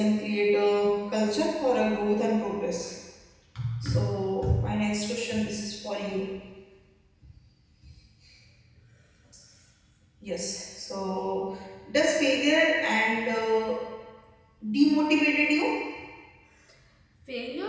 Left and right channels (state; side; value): identical; both; correlation 1.00